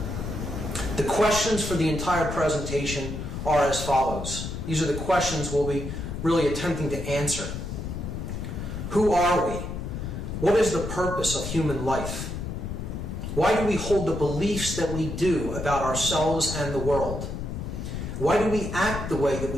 The questions for the entire presentation are as follows. These are the questions we'll be really attempting to answer. Who are we? What is the purpose of human life? Why do we hold the beliefs that we do about ourselves and the world? Why do we act the way that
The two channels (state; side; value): noise; left; rumble, 5 dB below the sound